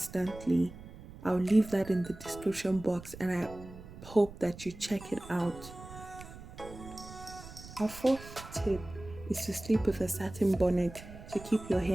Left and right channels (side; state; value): right; noise; rumble, 15 dB below the sound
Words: I'll leave that in the description box, and I hope that you check it out. Our fourth tip is to sleep with a satin bonnet to keep your